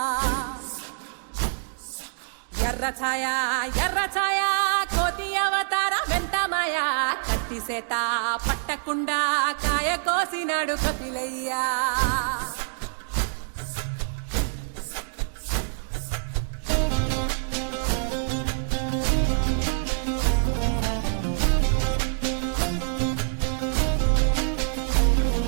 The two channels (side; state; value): left; silent; digital silence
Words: ఎర్ర ఛాయ కోతి అవతార వెంటమాయ కత్తి సేత పట్టకుండా కాయ కోసినాడు కపిలయ్యా